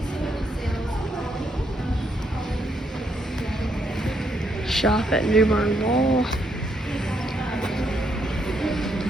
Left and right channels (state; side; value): normal; both; correlation 0.75